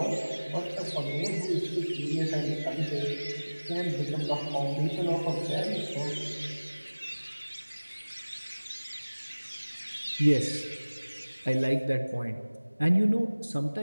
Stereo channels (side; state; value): both; inverted; correlation -1.00